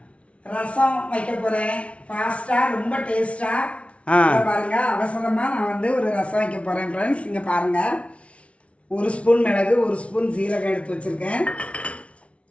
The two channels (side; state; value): right; late; 0.062 ms